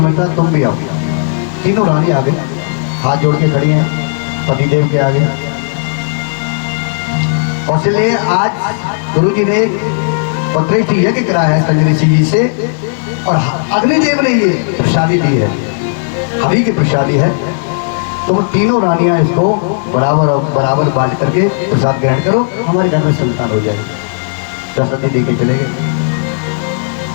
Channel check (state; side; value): silent; right; digital silence